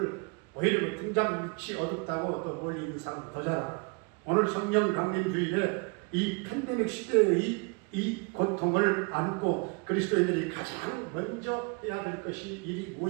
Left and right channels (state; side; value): quieter; left; 31.8 dB